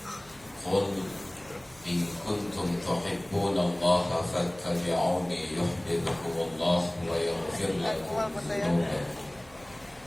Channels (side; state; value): right; noise; hum, 25 dB below the sound